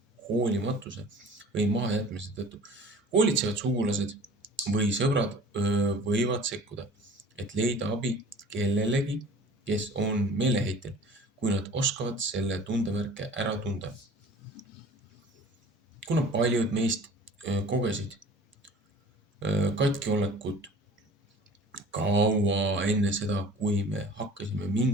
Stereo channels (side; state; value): both; normal; correlation 0.45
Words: hoolimatuse või mahajätmise tõttu. Hoolitsevad sugulased või sõbrad võivad sekkuda, et leida abi kellelegi, kes on meeleheitel, kui nad oskavad selle tundemärke ära tunda. Kuna paljud meist kogesid katkiolekut kaua enne seda, kui me hakkasime